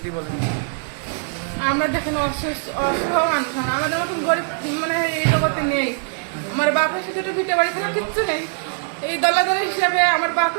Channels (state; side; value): silent; left; digital silence